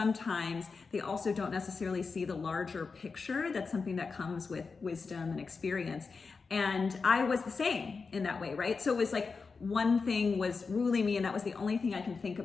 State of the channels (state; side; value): quieter; right; 4.7 dB